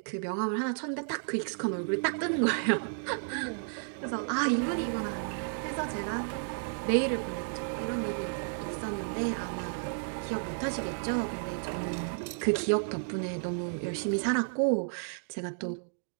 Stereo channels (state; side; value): silent; left; digital silence